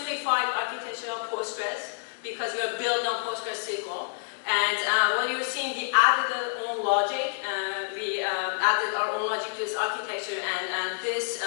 architecture of Postgres because we are built on Postgres SQL. And what you're seeing, we added our own logic. We added our own logic to this architecture, and this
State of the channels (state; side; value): silent; right; digital silence